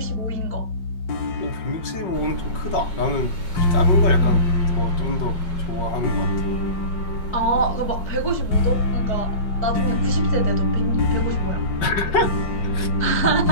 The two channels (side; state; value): right; late; 5.3 ms